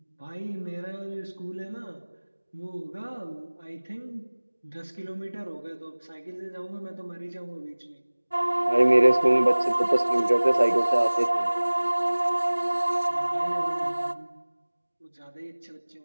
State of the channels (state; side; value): inverted; both; correlation -1.00